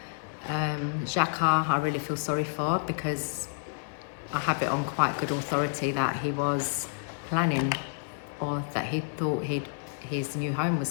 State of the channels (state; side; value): silent; right; 56 dB below the other